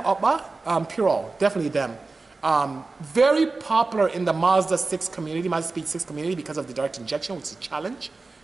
Puro, definitely them. Very popular in the Mazda 6 community, Mazda Speed 6 community because of the direct injection, which is a challenge,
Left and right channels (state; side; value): quieter; left; 3.7 dB